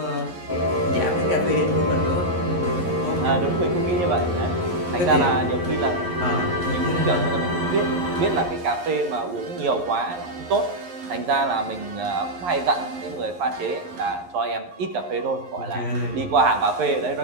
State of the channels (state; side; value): late; left; 11 ms